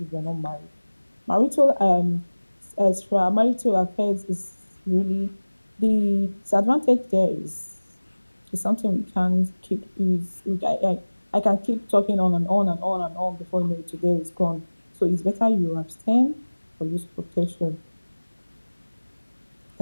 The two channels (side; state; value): both; inverted; correlation -1.00